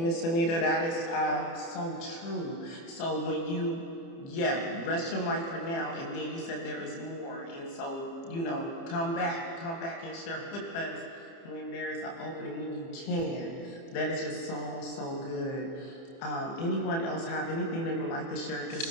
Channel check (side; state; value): right; late; 30 ms